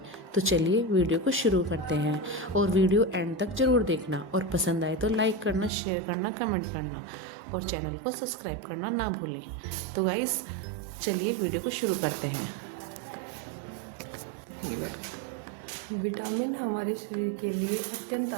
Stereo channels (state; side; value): drops out; left; at 5.7 s